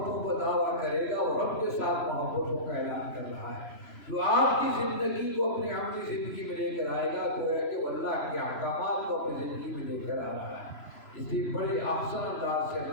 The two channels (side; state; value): right; late; 3.0 ms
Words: کا دعویٰ کرے گا وہ رب کے ساتھ محبتوں کا اعلان کر رہا ہے۔ جو آپ کی زندگی کو اپنی عملی زندگی میں لے کر آئے گا تو ہے کہ وہ اللہ کے احکامات کو اپنی زندگی میں لے کر آ رہا ہے۔ اس لیے بڑے احسن انداز سے